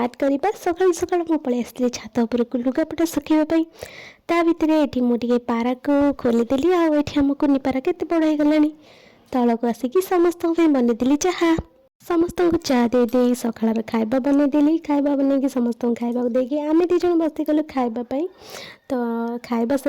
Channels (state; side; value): identical; both; correlation 1.00